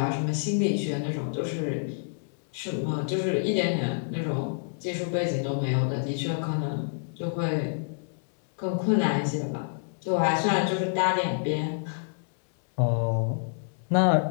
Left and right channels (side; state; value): right; silent; 60 dB below the other